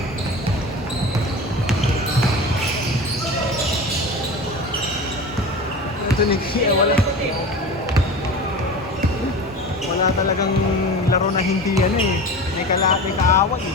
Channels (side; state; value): both; normal; correlation 0.32